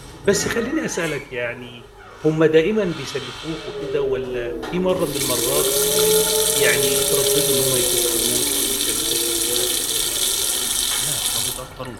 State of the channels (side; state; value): both; identical; correlation 1.00